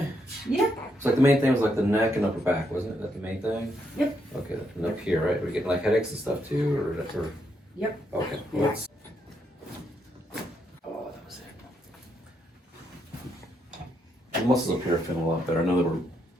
Yeah. It's like the main thing was like the neck and upper back, wasn't it? That the main thing? Yep. Okay, and up here, right? We're getting like headaches and stuff too, or? Yep. Okay. Yeah. Let's. Oh, that was it. The muscles up here are feeling a lot better. I know they were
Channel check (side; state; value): both; normal; correlation 0.78